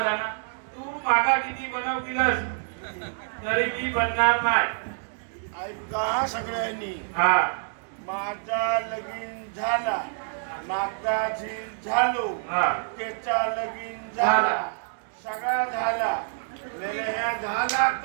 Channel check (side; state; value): left; silent; digital silence